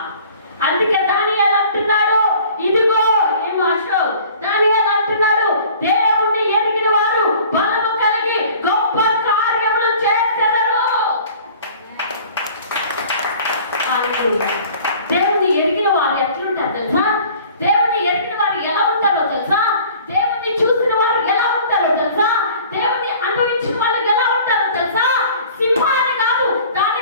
అందుకే దానియేలు అంటున్నాడు, ఇదిగో ఏం ఆశో, దానియేలు అంటున్నాడు, దేవుణ్ణి ఎరిగిన వారు బలము కలిగి గొప్ప కార్యములు చేసెదరు. దేవుణ్ణి ఎరిగిన వారు ఎట్లుంటారు తెలుసా? దేవుణ్ణి ఎరిగిన వారు ఎలా ఉంటారో తెలుసా? దేవుణ్ణి చూసిన వారు ఎలా ఉంటారో తెలుసా? దేవుణ్ణి అనుభవించిన వాళ్ళు ఎలా ఉంటారో తెలుసా? సింహాన్ని కాదు, దాని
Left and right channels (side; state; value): both; inverted; correlation -0.48